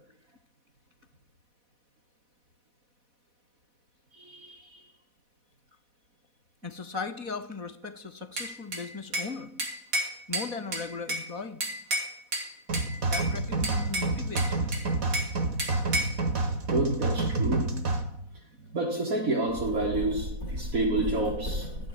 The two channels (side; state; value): left; late; 4.1 ms